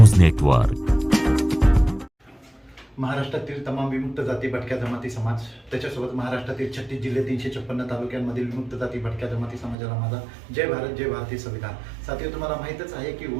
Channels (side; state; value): left; drops out; at 9.8 s